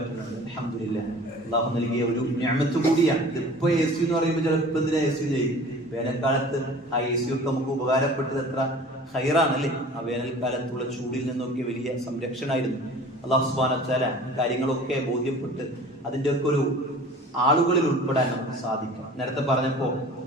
അൽഹംദുലില്ലാഹ്, അല്ലാഹു നൽകിയ ഒരു നിഅമത്ത് കൂടിയാണ്. ഇതിപ്പോ AC എന്ന് പറയുമ്പോൾ ചിലപ്പോൾ എന്തിനാ AC ചെയ്യും. വേനൽക്കാലത്ത് ആ AC ഒക്കെ നമുക്ക് ഉപകാരപ്പെട്ടത് എത്ര ഹൈറാണല്ലേ. ആ വേനൽക്കാലത്തുള്ള ചൂടിൽ നിന്നൊക്കെ വലിയ സംരക്ഷണമായിരുന്നു. അല്ലാഹു സുബ്ഹാനഹു വ തആല കാര്യങ്ങളൊക്കെ ബോധ്യപ്പെട്ട് അതിൻ്റെ ഒക്കെ ഒരു ആളുകളിൽ ഉൾപ്പെടാൻ നമുക്ക് സാധിക്കും. നേരത്തെ പറഞ്ഞപ്പോ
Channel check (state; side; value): normal; both; correlation 0.44